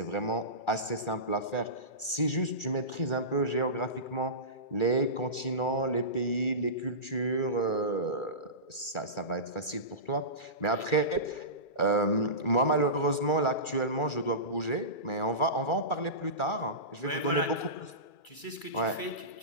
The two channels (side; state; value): right; late; 2.3 ms